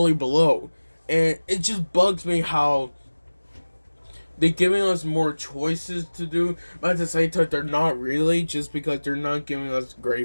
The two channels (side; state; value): both; inverted; correlation -1.00